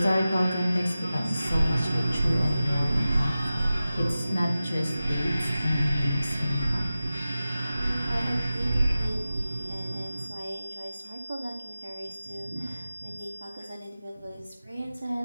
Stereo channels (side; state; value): both; inverted; correlation -0.95